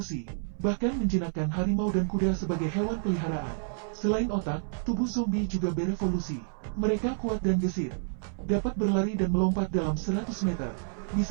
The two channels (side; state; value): left; silent; 58 dB below the other